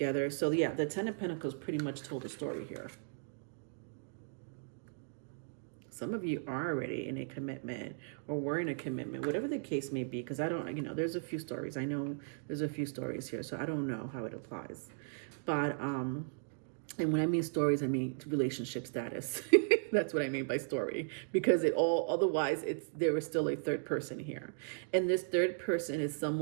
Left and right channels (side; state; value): left; silent; digital silence